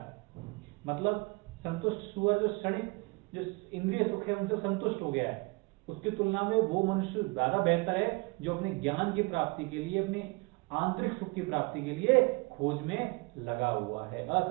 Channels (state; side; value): quieter; left; 27.5 dB